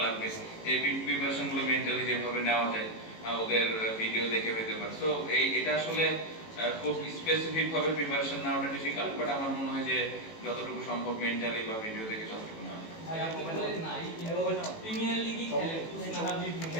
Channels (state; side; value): late; right; 18 ms